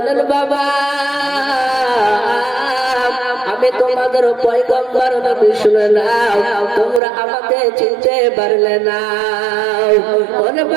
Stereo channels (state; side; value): drops out; left; at 7.0 s